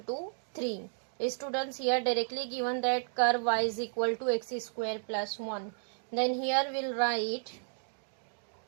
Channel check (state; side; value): silent; left; digital silence